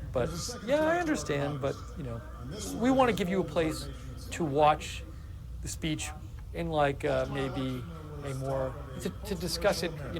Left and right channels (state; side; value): identical; both; correlation 1.00